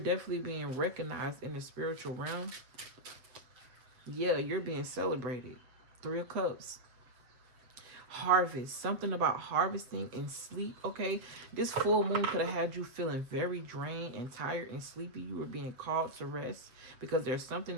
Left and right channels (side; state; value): left; late; 7.6 ms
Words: being recognized in the spiritual realm. Yeah, you're being celebrated. 3 of Cups. harvest, something about harvesting and sleep. Okay, this full moon could have had you feeling very drained and tired and sleepy. You were being called to rest because there's something